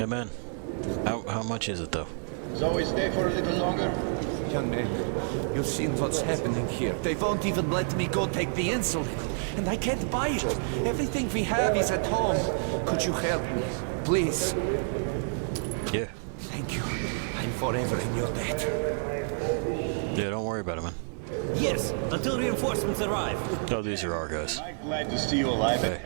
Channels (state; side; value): silent; left; 59 dB below the other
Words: man. How much is it, though? So we stay for a little longer? Young man, you've seen what's happening here. They won't even let me go take the insulin. And I can't buy it. Everything we have is at home. Could you help me? Please. Yeah. Thank you. I'm forever in your debt. Yeah, don't worry about it, man. Yes, until reinforcements arrive. Oh, these are our guys. I'm glad to see you alive and